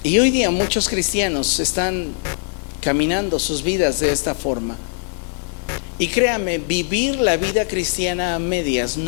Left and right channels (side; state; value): right; silent; digital silence